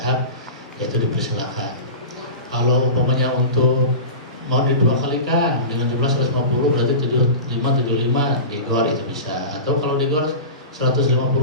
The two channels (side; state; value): both; inverted; correlation -0.31